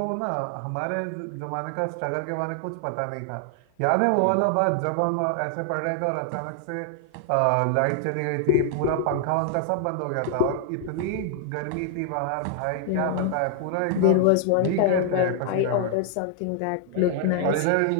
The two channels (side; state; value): both; different; correlation 0.00